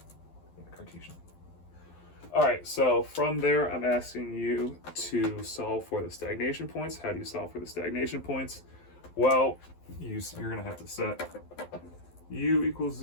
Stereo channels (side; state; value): right; late; 12 ms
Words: in the Cartesian. All right, so from there, I'm asking you to solve for the stagnation points. How do you solve for the stagnation points? Well, you're going to have to set u equals